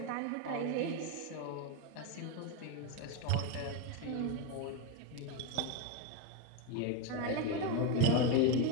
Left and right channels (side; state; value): both; different; correlation 0.03